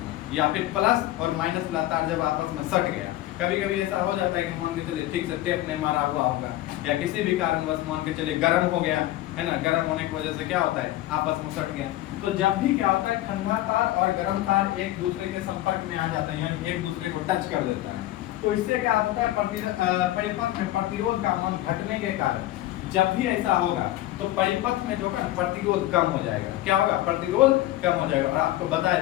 या फिर प्लस और माइनस वाला तार जब आपस में सट गया। कभी कभी ऐसा हो जाता है कि मान के चलिए ठीक से टेप ने मारा हुआ होगा, या किसी भी कारणवश मान के चलिए गर्म हो गया है ना, गर्म होने की वजह से क्या होता है, आपस में सट गया। तो जब भी क्या होता है, ठंडा तार और गर्म तार एक दूसरे के संपर्क में आ जाता है, यानी एक दूसरे को टच कर देता है, तो इससे क्या होता है, परिपथ में प्रतिरोध का मान घटने के कारण जब भी ऐसा होगा तो परिपथ में जो है प्रतिरोध कम हो जाएगा। क्या होगा, प्रतिरोध कम हो जाएगा। और आपको बताए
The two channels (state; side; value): quieter; right; 15.3 dB